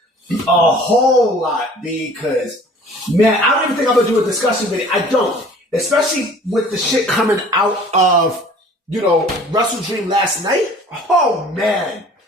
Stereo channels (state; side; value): normal; both; correlation 0.49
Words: A whole lot, because, man, I don't even think I'm going to do a discussion video. I don't. Especially with the shit coming out of, Wrestle Dream last night. Oh, man.